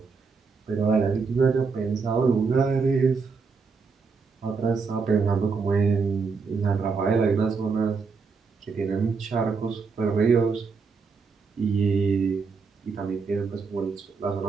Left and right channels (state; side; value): quieter; left; 5.0 dB